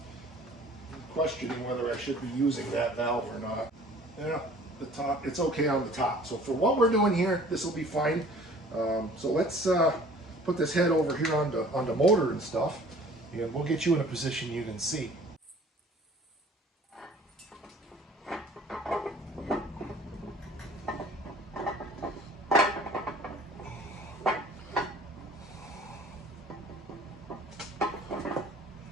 I'm questioning whether I should be using that valve or not. Yeah, the top, it's okay on the top. So for what we're doing here, this will be fine. So let's put this head over here on the motor and stuff, and we'll get you in a position you can see.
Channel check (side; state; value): both; normal; correlation 0.50